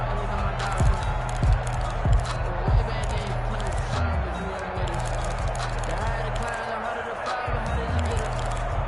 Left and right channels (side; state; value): both; identical; correlation 1.00